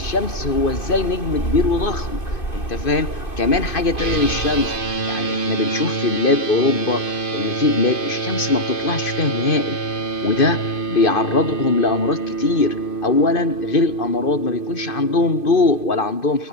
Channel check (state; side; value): late; right; 2.5 ms